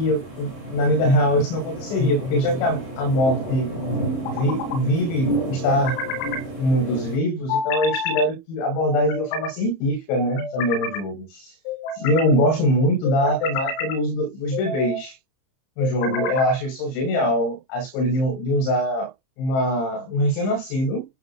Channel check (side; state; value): right; late; 30 ms